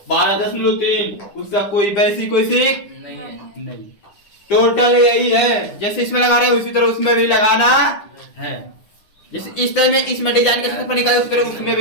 12.3, उसका कोई वैसी कोई सीख नहीं, टोटल यही है, जैसे इसमें लगा रहे हैं उसी तरह उसमें भी लगाना है, जैसे इस टाइम में इसमें डिजाइन का क्षेत्रफल निकाले उसी तरह उसमें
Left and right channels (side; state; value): right; late; 9.9 ms